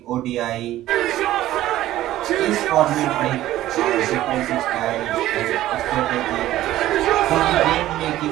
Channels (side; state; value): left; quieter; 14.4 dB